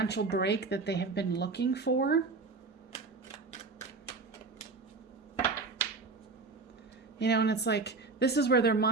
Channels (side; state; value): left; quieter; 4.0 dB